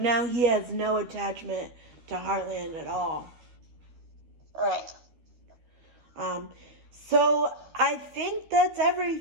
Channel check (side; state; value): left; late; 12 ms